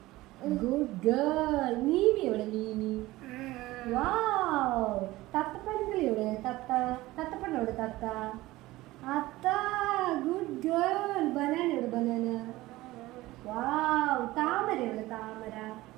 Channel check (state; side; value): quieter; left; 18.2 dB